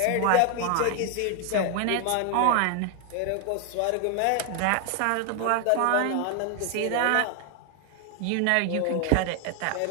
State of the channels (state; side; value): different; both; correlation 0.00